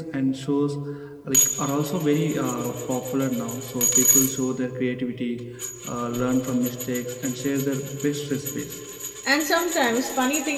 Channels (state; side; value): identical; both; correlation 1.00